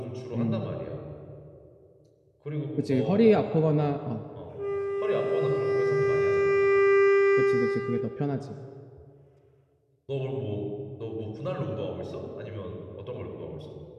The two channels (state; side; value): identical; both; correlation 1.00